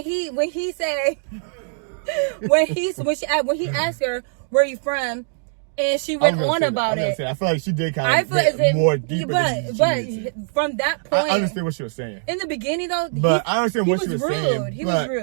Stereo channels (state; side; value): silent; left; digital silence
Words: he said when he asked her where you from, and she went on about it. I feel like she did kind of get more deeper. But from that point, I understand what she was saying. In the beginning, though, I understand what she was saying. He was